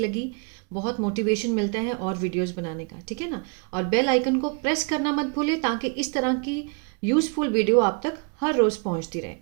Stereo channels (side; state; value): left; quieter; 36.2 dB